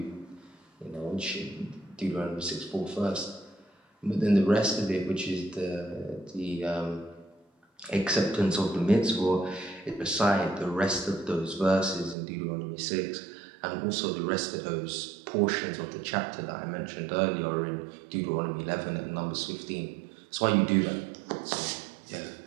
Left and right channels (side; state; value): left; drops out; at 12.2 s